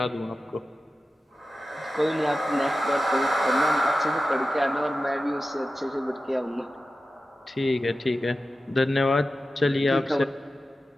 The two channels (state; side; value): normal; both; correlation 0.93